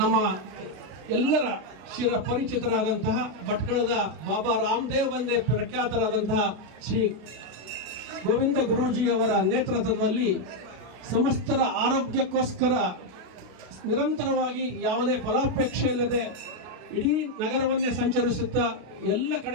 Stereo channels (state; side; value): late; left; 33 ms